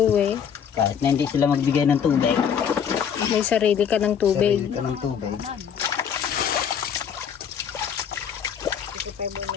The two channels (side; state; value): right; quieter; 7.8 dB